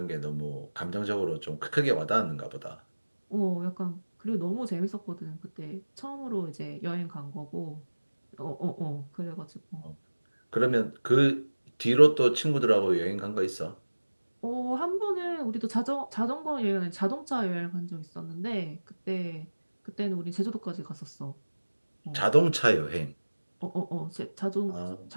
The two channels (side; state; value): both; inverted; correlation -1.00